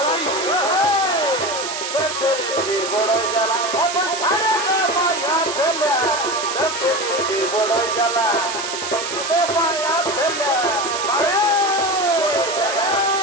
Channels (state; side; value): noise; right; hiss, 6 dB below the sound